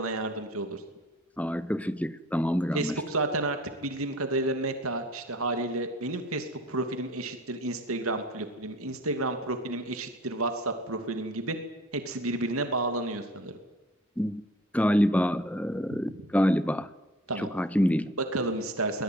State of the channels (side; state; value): both; normal; correlation 0.46